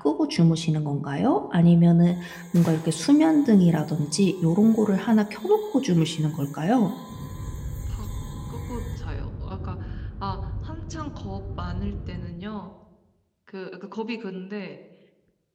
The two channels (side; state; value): both; identical; correlation 1.00